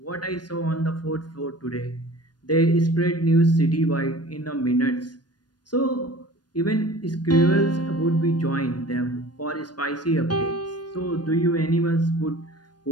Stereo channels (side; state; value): right; late; 0.69 ms